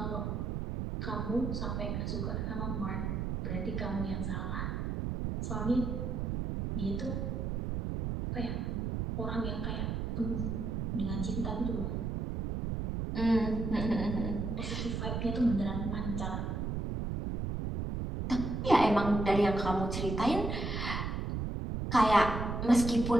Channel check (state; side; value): noise; right; rumble, 2 dB below the sound